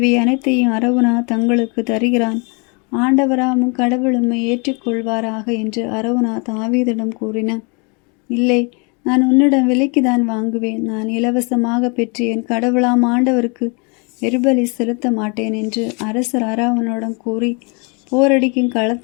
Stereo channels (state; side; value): quieter; right; 33.0 dB